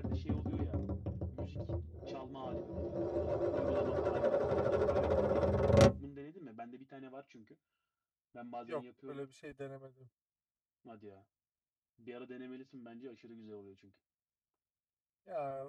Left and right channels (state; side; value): identical; both; correlation 1.00